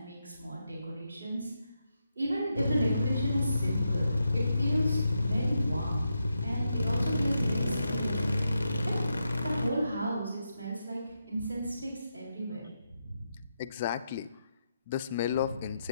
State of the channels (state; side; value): inverted; both; correlation -0.85